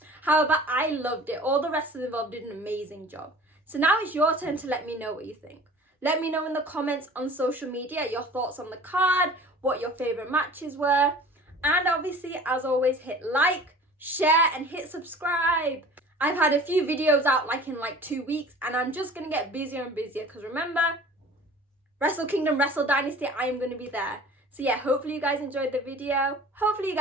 However, I loved it. All the wrestlers involved did an amazing job. So now it's your turn to let me know what you think. Let me know in the comments on social media your thoughts on the card, what your favourite matches were. And obviously, as always, hit like, share, and hit subscribe. I've had a few videos out in 2 weeks, and I'm just going to get busier and busier because remember, Wrestle Kingdom, Wrestle Dynasty, I am going to be there. So yeah, hopefully you guys enjoyed the video. Hopefully you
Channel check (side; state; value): both; normal; correlation 0.44